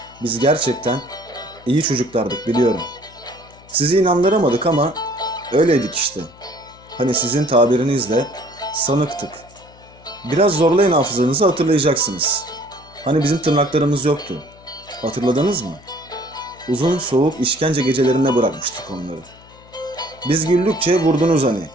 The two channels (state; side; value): noise; left; hum, 25 dB below the sound